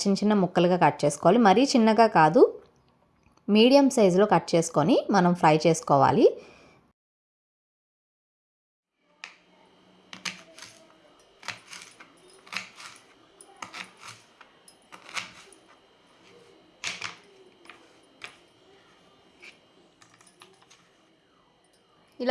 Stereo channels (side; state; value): both; identical; correlation 1.00